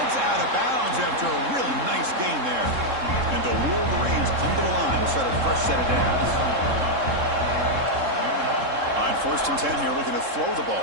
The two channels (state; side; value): late; left; 3.7 ms